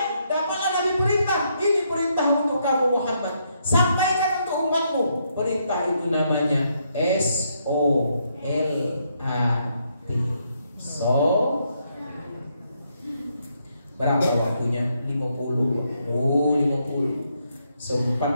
dapatlah Nabi perintah. Ini perintah untuk kamu Muhammad. Sampaikan untuk umatmu. Perintah itu namanya S-O-L-A-T. Berapa waktunya? 50. Oh, 50.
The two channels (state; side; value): inverted; both; correlation -0.76